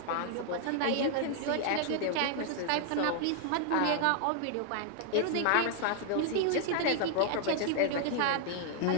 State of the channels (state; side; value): different; both; correlation 0.00